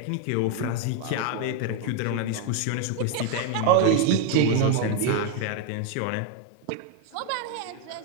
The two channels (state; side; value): different; both; correlation 0.01